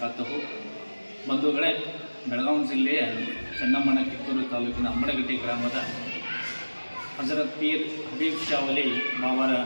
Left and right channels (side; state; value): both; inverted; correlation -1.00